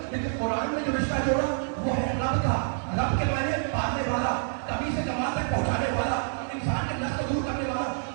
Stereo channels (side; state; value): left; silent; digital silence